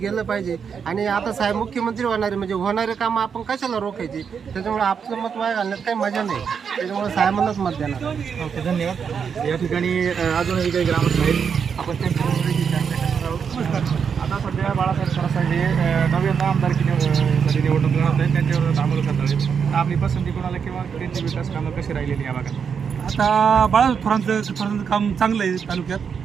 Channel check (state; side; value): quieter; left; 6.7 dB